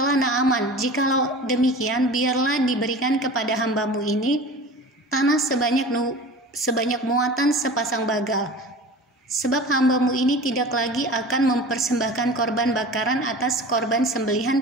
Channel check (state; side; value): normal; both; correlation 0.37